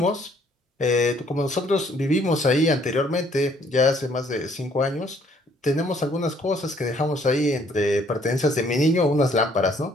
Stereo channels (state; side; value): normal; both; correlation 0.63